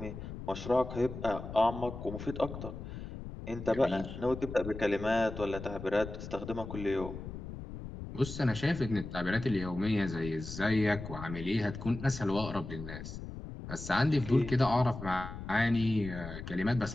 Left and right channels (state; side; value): noise; left; rumble, 9 dB below the sound